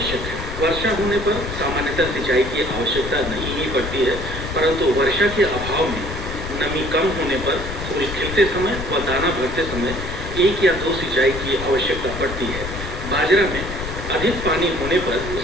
है। वर्षा होने पर सामान्यतः सिंचाई की आवश्यकता नहीं ही पड़ती है, परंतु वर्षा के अभाव में नमी कम होने पर फूल खिलते समय व दाना भरते समय एक या दो सिंचाई की आवश्यकता पड़ती है। बाजरा में अधिक पानी होने पर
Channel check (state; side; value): noise; left; rumble, 8 dB below the sound